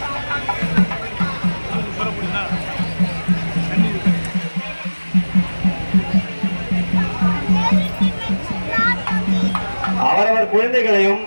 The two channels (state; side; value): inverted; both; correlation -1.00